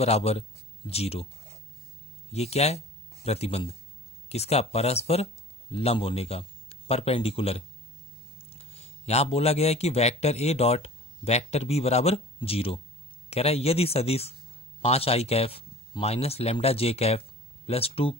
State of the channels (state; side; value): normal; both; correlation 0.42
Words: 0। ये क्या है? प्रतिबंध। किसका? परस्पर लंब होने का, परपेंडिकुलर। यहां बोला गया है कि vector A dot vector B बराबर 0। कह रहा है यदि सदिश 5i cap minus lambda J cap plus